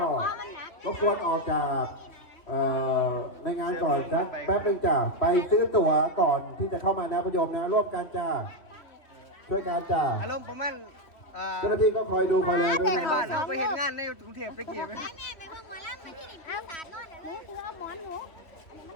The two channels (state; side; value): late; right; 2.9 ms